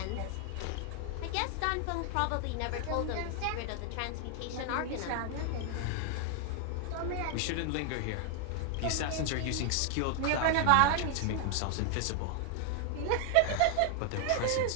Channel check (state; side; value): different; both; correlation 0.00